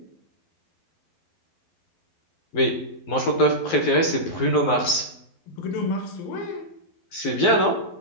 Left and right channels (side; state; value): right; late; 12 ms